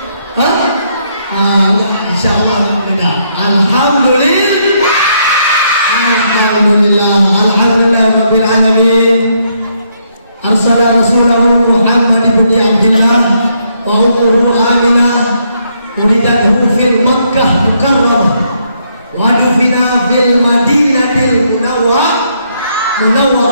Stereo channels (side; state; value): both; inverted; correlation -0.73